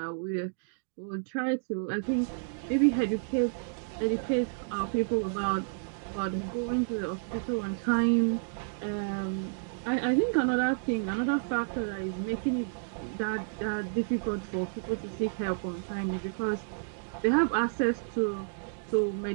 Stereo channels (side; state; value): left; silent; digital silence